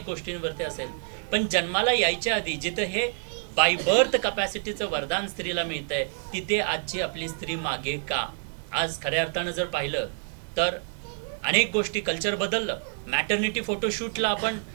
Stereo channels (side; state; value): left; silent; 60 dB below the other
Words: गोष्टींवरती असेल, पण जन्माला यायच्या आधी जिथं हे बाय बर्थ कपॅसिटीचं वरदान स्त्रीला मिळतंय तिथे आजची आपली स्त्री मागे का? आज खऱ्या अर्थानं जर पाहिलं तर अनेक गोष्टी कल्चर बदललं. मॅटर्निटी फोटोशूटला आपण